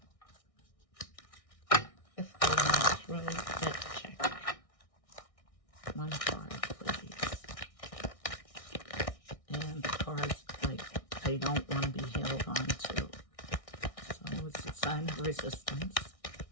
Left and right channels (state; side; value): late; right; 1.6 ms